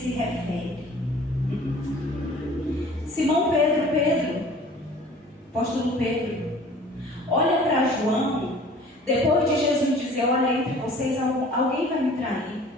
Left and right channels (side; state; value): both; normal; correlation 0.48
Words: refere. Simão Pedro, apóstolo Pedro, olha para João, depois de Jesus dizer, olha, entre vocês alguém vai me trair.